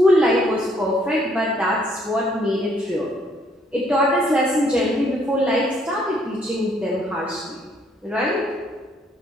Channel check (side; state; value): both; normal; correlation 0.67